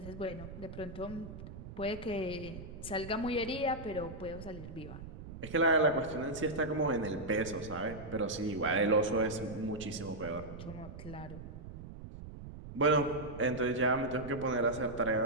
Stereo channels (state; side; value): noise; right; rumble, 12 dB below the sound